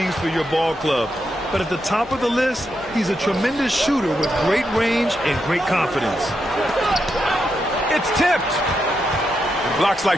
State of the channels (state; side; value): normal; both; correlation 0.84